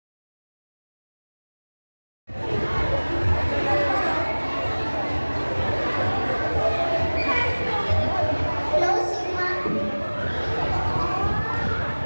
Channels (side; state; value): both; inverted; correlation -1.00